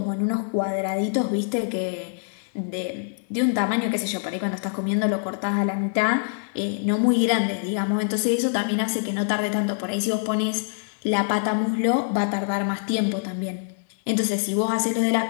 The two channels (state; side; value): silent; right; digital silence